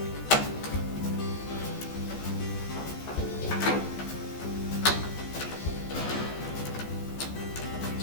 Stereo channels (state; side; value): late; right; 14 ms